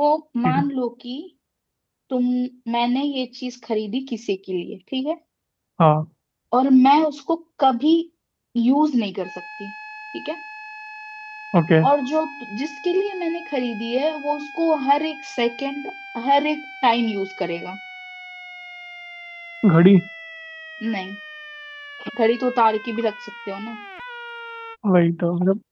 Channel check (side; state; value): both; identical; correlation 1.00